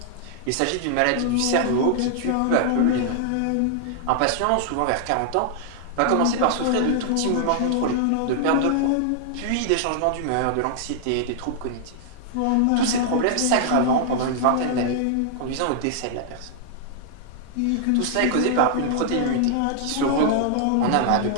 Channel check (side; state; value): both; different; correlation 0.00